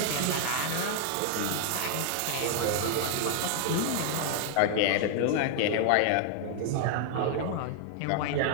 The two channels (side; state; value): both; different; correlation 0.00